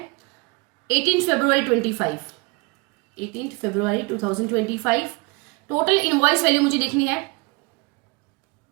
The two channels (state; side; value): quieter; left; 27.6 dB